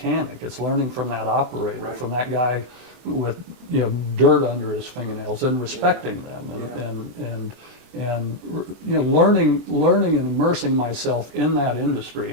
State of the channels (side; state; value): left; late; 24 ms